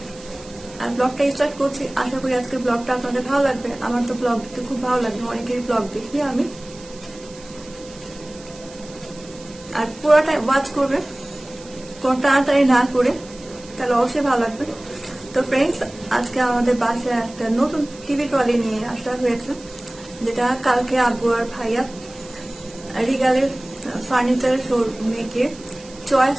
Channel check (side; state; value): right; noise; hiss, 20 dB below the sound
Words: আর ব্লগটা স্টার্ট করছি। আশা করি আজকে ব্লগটা আপনাদের ভালো লাগবে। আমার তো ব্লগ দেখতে খুব ভালো লাগবে, অনেকেরই ব্লগ দেখি আমি। আর পুরোটা ওয়াচ করবে, কোনো তাড়াতাড়ি না করে, তাহলে অবশ্যই ভালো লাগবে। তো ফ্রেন্ডস, আজকে আমাদের বাসায় একটা নতুন টিভি ট্রলি নিয়ে আসা হয়েছে, যেটা কালকে আব্বু আর ভাইয়া রিগালের ফার্নিচার শোরুমে গিয়ে চয়েস